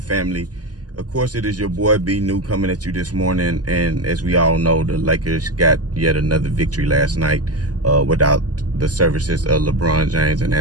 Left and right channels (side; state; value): left; late; 0.68 ms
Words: family? Of course, it is your boy B New coming at you this morning. And as we all know, the Lakers got yet another victory last night without the services of LeBron James and